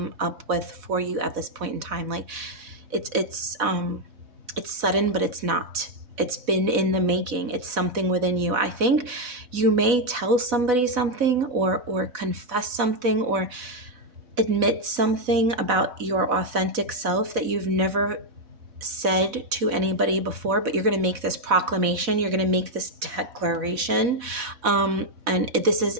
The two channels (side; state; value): left; late; 4.1 ms